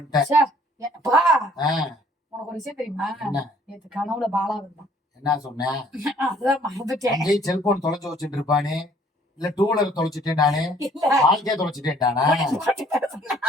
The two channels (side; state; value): both; normal; correlation 0.59